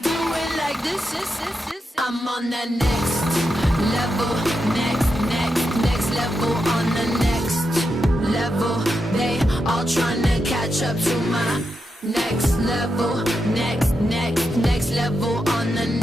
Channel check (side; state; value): both; normal; correlation 0.86